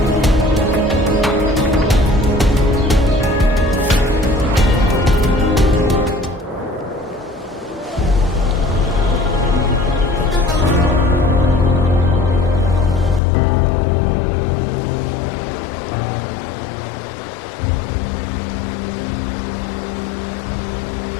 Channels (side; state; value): right; drops out; at 13.2 s